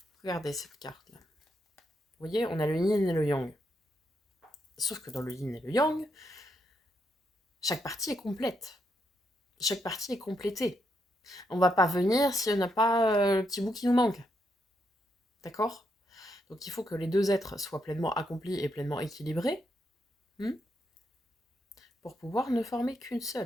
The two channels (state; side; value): normal; both; correlation 0.79